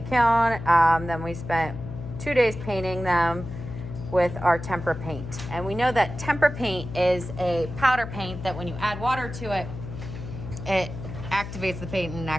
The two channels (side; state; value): left; noise; hum, 9 dB below the sound